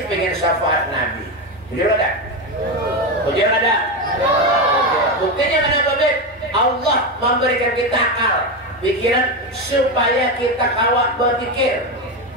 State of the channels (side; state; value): right; noise; hum, 29 dB below the sound